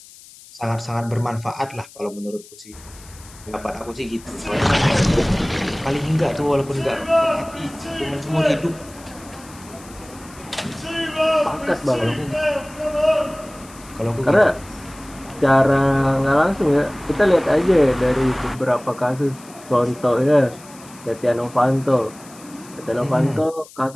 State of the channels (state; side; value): noise; left; hiss, 21 dB below the sound